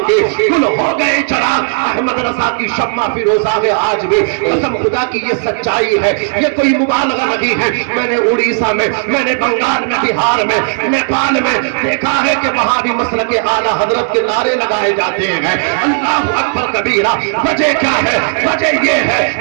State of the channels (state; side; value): silent; left; 68 dB below the other